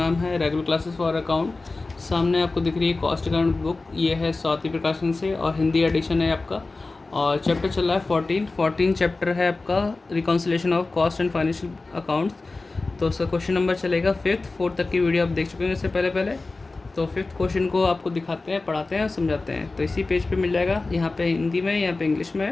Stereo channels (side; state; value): right; quieter; 3.5 dB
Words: है रेगुलर क्लासेस फॉर अकाउंट। सामने आपको दिख रही है कॉस्ट अकाउंट बुक। ये है स्वाति प्रकाशन से और हिंदी एडिशन है आपका। और चैप्टर चल रहा है 14 चैप्टर है आपका, reconciliation of cost and financial accounts. तो उसका क्वेश्चन नंबर चलेगा 5th 4th तक की वीडियो आप देख चुके हैं इससे पहले। तो 5th क्वेश्चन को आपको दिखाते हैं, पढ़ाते हैं और समझाते हैं। तो इसी पेज पे मिल जाएगा, यहाँ पे हिंदी में, यहाँ पे इंग्लिश में